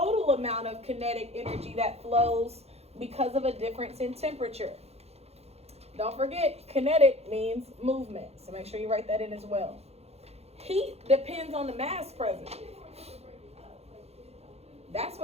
amount of kinetic energy that flows because of a difference in temperature. Don't forget, kinetic means movement, so make sure you write that in as well. Heat depends on the mass present. That's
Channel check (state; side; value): late; left; 0.30 ms